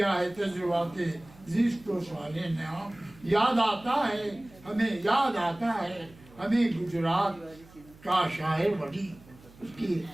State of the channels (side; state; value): right; noise; hum, 24 dB below the sound